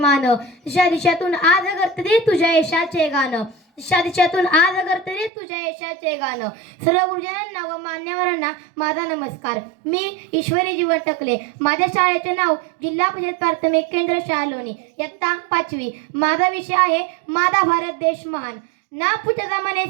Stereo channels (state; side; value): drops out; left; at 5.3 s